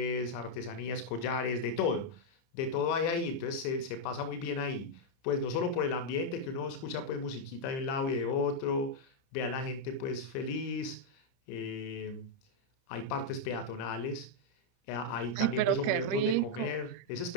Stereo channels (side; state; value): right; late; 30 ms